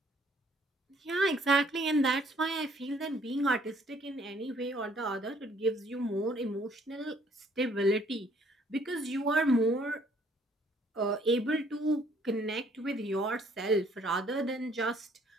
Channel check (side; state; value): both; normal; correlation 0.62